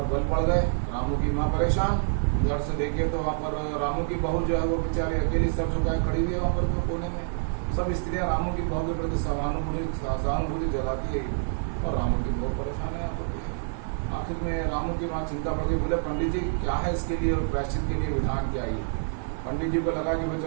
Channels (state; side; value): silent; left; 57 dB below the other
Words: बल पड़ गए। रामू की माँ परेशान। घर से देखिए तो वहाँ पर रामू की बहू जो है वो बेचारी अकेली सर झुकाए खड़ी हुई है वहाँ पर कोने में। सब स्त्रियाँ रामू की बहू के प्रति सहानुभूति जगाती है और रामू की बहू परेशान है यहाँ पर। आखिर में रामू की माँ चिंता पड़ गई। बोले पंडित जी क्या है इसके लिए प्रायश्चित के लिए विधान क्या है? पंडित जी को लगा कि भाई